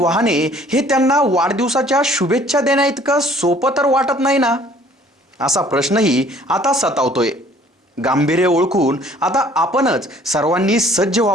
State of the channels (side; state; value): both; normal; correlation 0.56